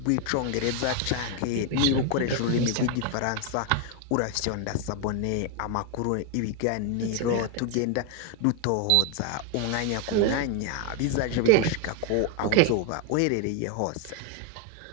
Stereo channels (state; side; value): different; both; correlation 0.01